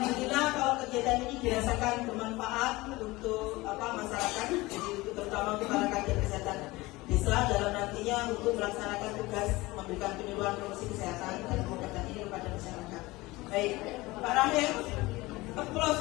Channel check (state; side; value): quieter; right; 20.8 dB